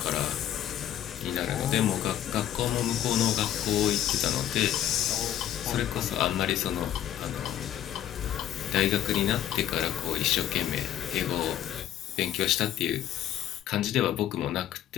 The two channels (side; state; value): right; quieter; 11.4 dB